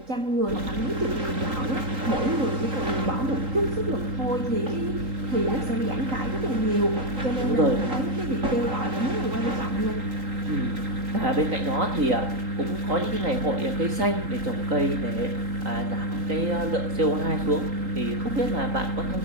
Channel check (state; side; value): late; left; 3.8 ms